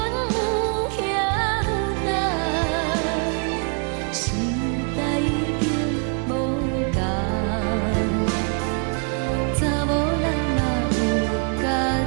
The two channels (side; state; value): left; quieter; 39.4 dB